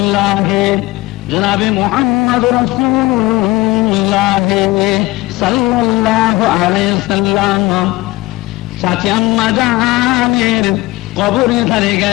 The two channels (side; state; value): right; quieter; 20.1 dB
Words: জনাবে মুহাম্মদ রাসূলুল্লাহ সাল্লাল্লাহু আলাইহি সাল্লাম চাচি আম্মা জানের কবরে ধারে